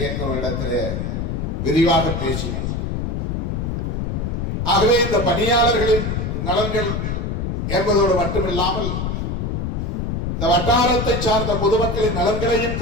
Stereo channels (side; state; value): left; noise; rumble, 2 dB below the sound